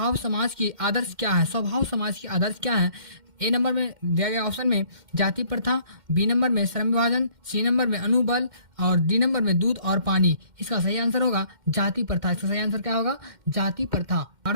समाज की आदर्श क्या है? स्वभाव समाज की आदर्श क्या है? A नंबर में दिया गया ऑप्शन में जाति प्रथा। B नंबर में श्रम विभाजन। C नंबर में अनुबल। और D नंबर में दूध और पानी। इसका सही आंसर होगा जाति प्रथा। इसका सही आंसर क्या होगा? जाति प्रथा। 12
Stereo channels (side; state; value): left; late; 2.1 ms